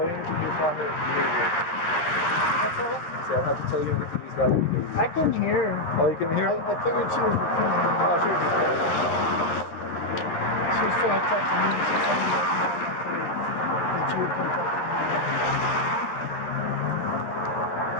you anything. You find it. That's all? So I don't have to tell you anything. He's got it. I couldn't hear her. Oh, you can hear? I figured she was recording. Oh, sure. She was trying to talk to me. She told me that you would come talk to me.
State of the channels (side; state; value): right; late; 12 ms